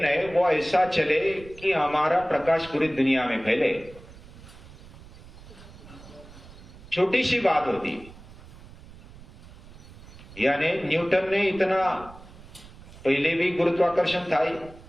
है वो ऐसा चले कि हमारा प्रकाश पूरी दुनिया में फैले। छोटी सी बात होती है, यानी न्यूटन ने इतना, पहले भी गुरुत्वाकर्षण था ही,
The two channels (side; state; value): right; noise; rumble, 19 dB below the sound